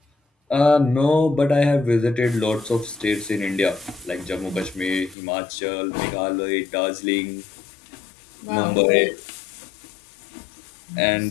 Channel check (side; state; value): right; drops out; at 5.2 s